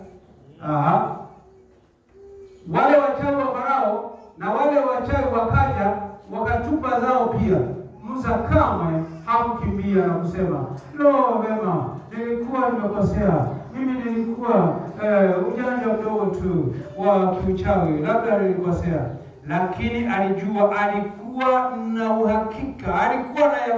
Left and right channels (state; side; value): identical; both; correlation 1.00